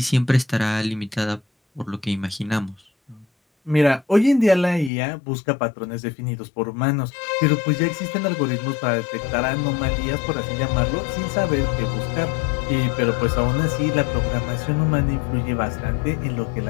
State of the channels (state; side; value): drops out; right; at 4.9 s